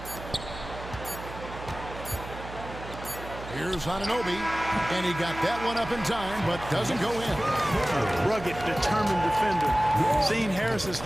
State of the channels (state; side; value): noise; right; hum, 12 dB below the sound